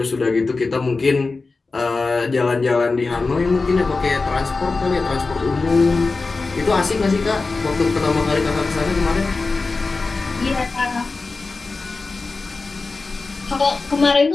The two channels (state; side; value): quieter; right; 3.9 dB